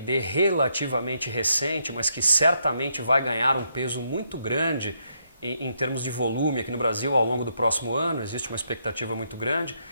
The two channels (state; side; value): inverted; both; correlation -0.77